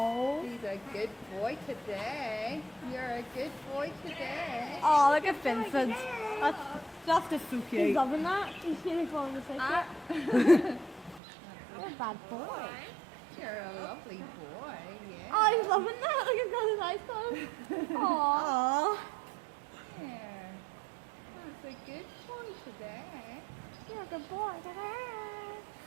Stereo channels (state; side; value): drops out; left; at 11.2 s